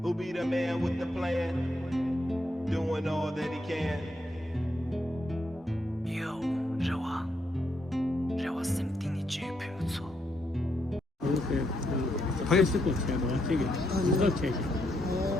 be the man with the plan, doing all that he can. Yo, 让我心定你绝配不错。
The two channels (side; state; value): both; normal; correlation 0.78